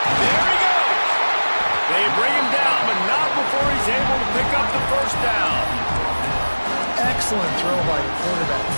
There he goes. They bring him down, but not before he's able to pick up the first down. Excellent throw by the quarterback.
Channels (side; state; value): both; inverted; correlation -1.00